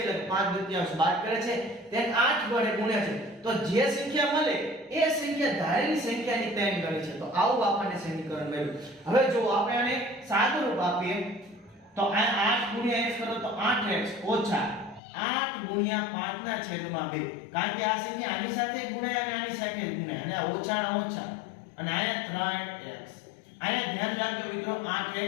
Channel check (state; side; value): drops out; right; at 15.0 s